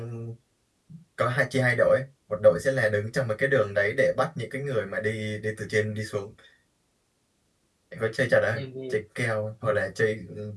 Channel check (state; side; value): identical; both; correlation 1.00